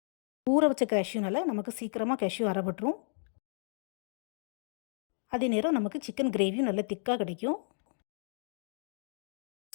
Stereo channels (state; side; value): silent; right; digital silence